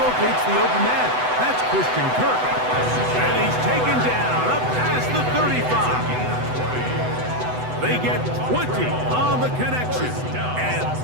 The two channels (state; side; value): late; left; 8.0 ms